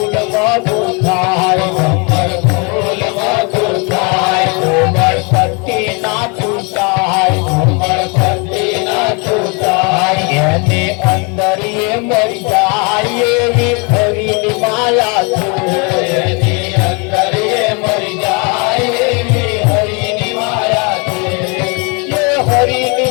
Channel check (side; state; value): right; quieter; 32.3 dB